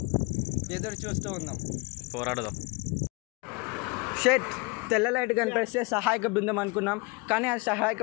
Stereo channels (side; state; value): right; quieter; 28.5 dB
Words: ఎదురు చూస్తూ ఉందాం. పోరాడదాం. షెట్ తెల్ల లైట్ కనిపిస్తే సహాయక బృందం అనుకున్నాం. కానీ అది సహాయక